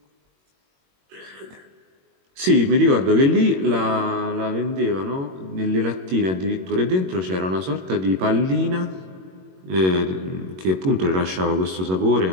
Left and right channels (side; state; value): left; late; 22 ms